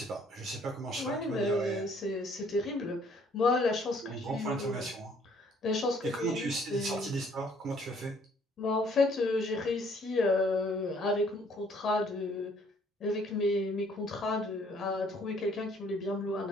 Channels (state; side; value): normal; both; correlation 0.62